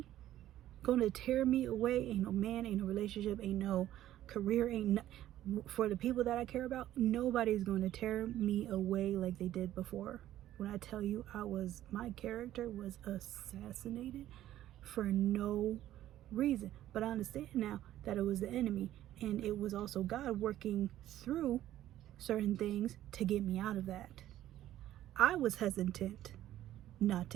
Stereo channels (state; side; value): quieter; left; 13.1 dB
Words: gonna tear me away. Ain't no man, ain't no relationship, ain't no career, for the people that I care about, nobody's going to tear me away like they did before. When I tell you, my character was assassinated for no reason. But I understand now that it was the enemy, and it was also God working through certain things to get me out of that. I was hesitant not